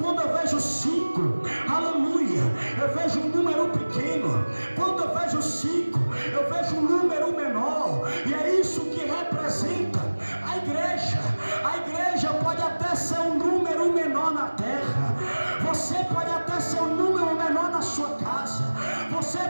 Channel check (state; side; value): inverted; both; correlation -1.00